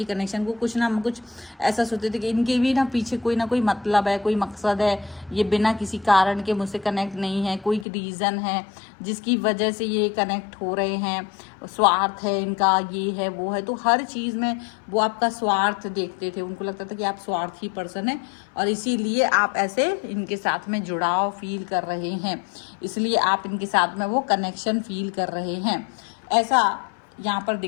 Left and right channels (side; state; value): right; drops out; at 7.9 s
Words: कनेक्शन को कुछ ना कुछ ऐसा सोचते थे कि इनके भी ना पीछे कोई ना कोई मतलब है, कोई मकसद है, ये बिना किसी कारण के मुझसे कनेक्ट नहीं है, कोई रीज़न है जिसकी वजह से ये कनेक्ट हो रहे हैं, स्वार्थ है इनका, ये है वो है। तो हर चीज़ में वो आपका स्वार्थ देखते थे, उनको लगता था कि आप स्वार्थी पर्सन है और इसीलिए आप ऐसे इनके साथ में जुड़ाव फील कर रहे हैं, इसलिए आप इनके साथ में वो कनेक्शन फील कर रहे हैं, ऐसा यहाँ पर